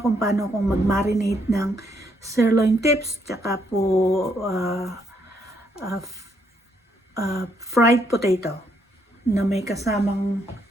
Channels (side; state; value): both; normal; correlation 0.73